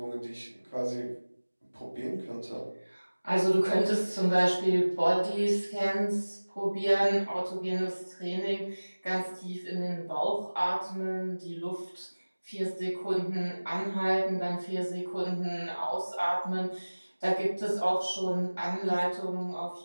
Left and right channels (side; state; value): both; inverted; correlation -1.00